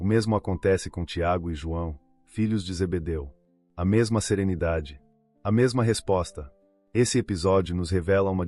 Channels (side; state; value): both; identical; correlation 1.00